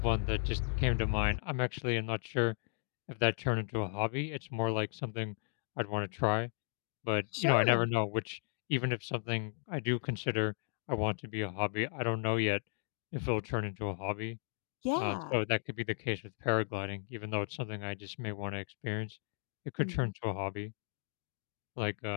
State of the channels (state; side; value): silent; right; digital silence